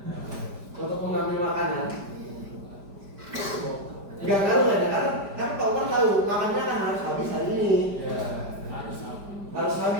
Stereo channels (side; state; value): left; late; 5.0 ms